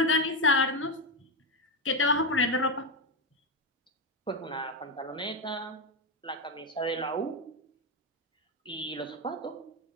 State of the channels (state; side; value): normal; both; correlation 0.09